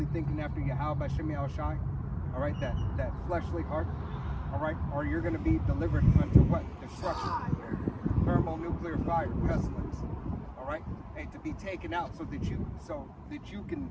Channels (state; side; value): identical; both; correlation 1.00